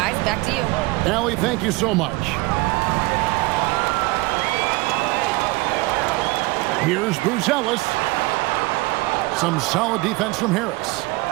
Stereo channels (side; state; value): left; quieter; 22.6 dB